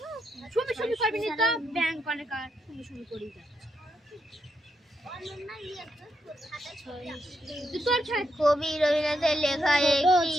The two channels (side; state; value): both; normal; correlation 0.82